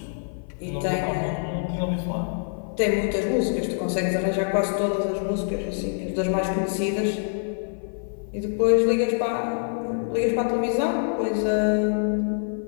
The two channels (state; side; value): silent; right; 55 dB below the other